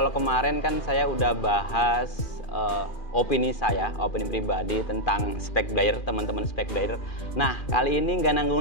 kemarin kan saya udah bahas opini pribadi tentang spek player, teman-teman spek player. Nah, kali ini nggak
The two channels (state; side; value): late; right; 2.4 ms